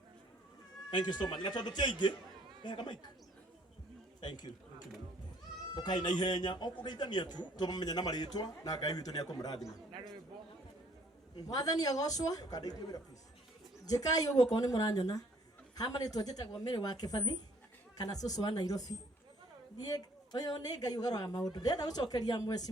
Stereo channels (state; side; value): normal; both; correlation 0.61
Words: Thank you so much. Natondu tiaingi kama mic. Thank you. Okay na ihenya okugeithania tu tumenya na maritwa na Ngai witu ni akumurathima mwathani agocwo jikai uguo ko ni muranyona hamaritwo njitagwo Mary wa Kibathi kana cucu wa Nairobi thie uyu ni Ngai ugarwa maundu ndenda gucokeria